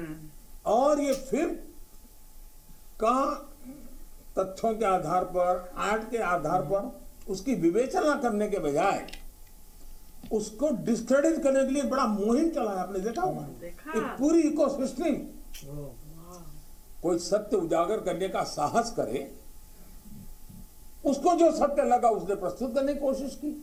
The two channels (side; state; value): both; identical; correlation 1.00